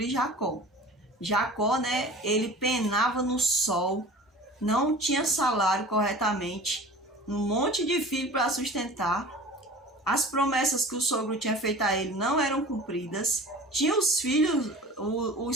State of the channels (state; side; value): normal; both; correlation 0.40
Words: Jacó. Jacó, né, ele penava no sol, não tinha salário corretamente, um monte de filho para sustentar, as promessas que o sogro tinha feito a ele não eram cumpridas, tinha os filhos,